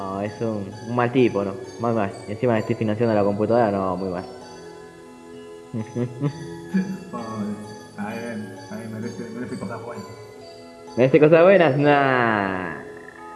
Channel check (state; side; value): identical; both; correlation 1.00